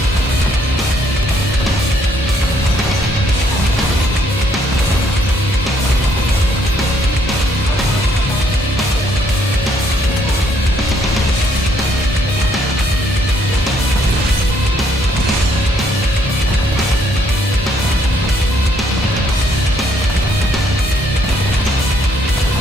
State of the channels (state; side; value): normal; both; correlation 0.69